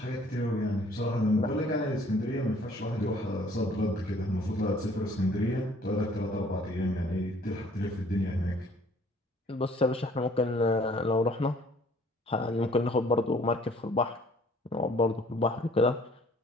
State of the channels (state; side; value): normal; both; correlation 0.58